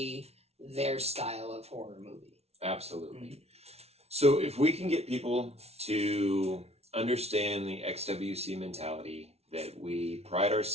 their style of horror movie. Absolutely. So if we can get people to understand the XWC mentality, that we pride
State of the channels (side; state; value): left; late; 0.31 ms